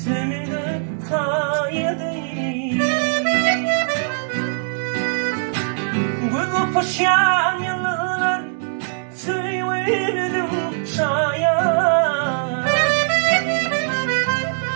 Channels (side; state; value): left; silent; digital silence